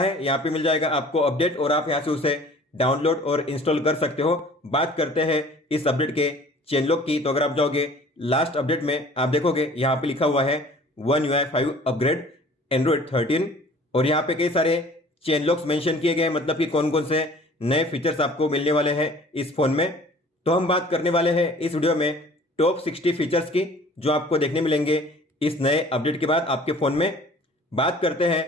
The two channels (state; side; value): normal; both; correlation 0.49